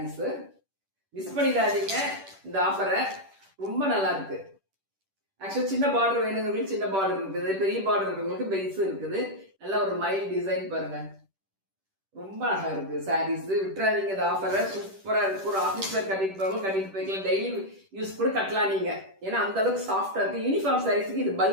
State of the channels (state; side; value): late; left; 10 ms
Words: மிஸ் பண்ணிடாதீங்க இந்த ஆஃபரை, ரொம்ப நல்லா இருக்கு. ஆக்சுவலா சின்ன பார்டர் வேணுங்கிறவங்களுக்கு சின்ன பார்டர் இருக்குது, பெரிய பார்டர் இருக்கிறவங்களுக்கு பெருசு இருக்குது. நல்ல ஒரு மைல் டிசைன் பாருங்க, ரொம்ப அழகா இருக்கு. சாரீஸ் விட்டுறாதீங்க இந்த ஆஃபரை, சூப்பரா இருக்கு. ஒரு ஆஃபீஸ் வேர் கட்டிட்டு போவாங்க, கட்டிட்டு போய்க்கலாம். டெய்லி யூஸ் கூட கட்டலாம் நீங்க, ஏன்னா அந்த அளவுக்கு சாஃப்டா இருக்கு. யூனிஃபார்ம் சாரீஸ்க்கு இது